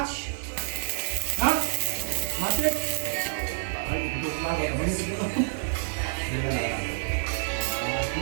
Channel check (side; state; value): left; silent; 59 dB below the other